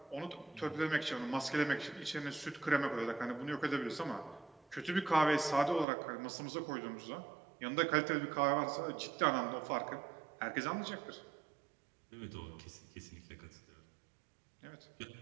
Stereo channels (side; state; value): left; drops out; at 5.9 s